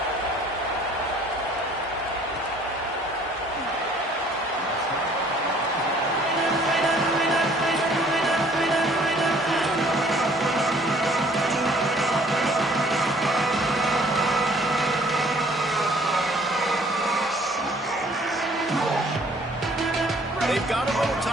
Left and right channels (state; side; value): normal; both; correlation 0.57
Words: They've got a little